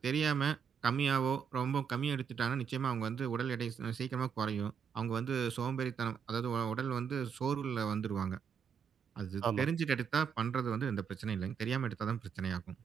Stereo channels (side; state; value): left; quieter; 6.9 dB